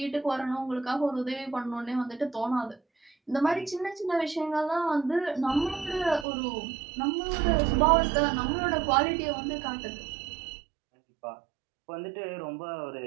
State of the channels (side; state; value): left; drops out; at 6.2 s